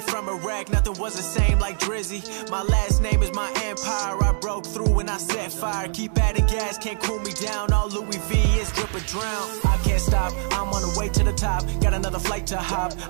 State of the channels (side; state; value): left; silent; digital silence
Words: from Iraq, nothing was the same like Drizzy. My last name is my empire, I broke through and I set fire. Keep adding gas, can't cool me down, all Louis V is drip or drown. I can't stop, I'm on the way to the top. Got another flight to hop,